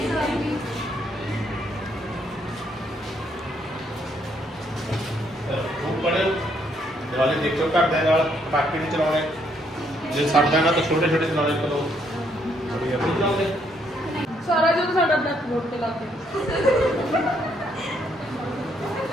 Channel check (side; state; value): both; normal; correlation 0.71